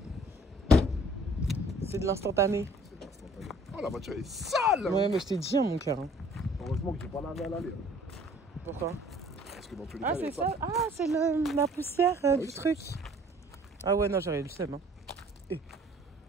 c'est de l'instantané. C'est instantané. Oh, la voiture est sale. Ouais mais je t'ai dit hein, mon cœur. Hein. Heureusement que j'ai pas lavé à l'aller. Pourquoi? Parce que dans tous les Ah cas, c'est elle est ça. Ah c'est la poussière oui, du c'est- truc. Ah ouais non j'aurais eu le seum. Hein.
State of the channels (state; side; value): normal; both; correlation 0.55